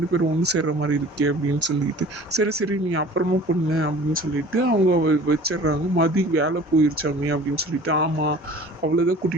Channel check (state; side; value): normal; both; correlation 0.45